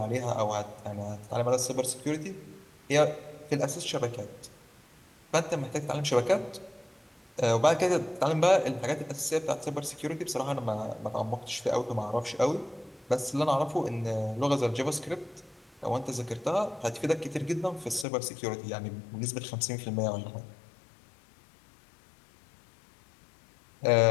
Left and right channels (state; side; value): drops out; right; at 18.1 s